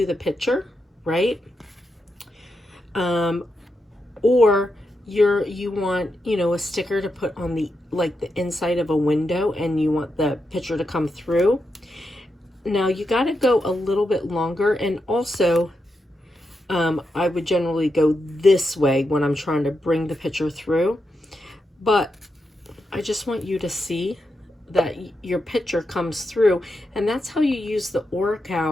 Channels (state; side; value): normal; both; correlation 0.86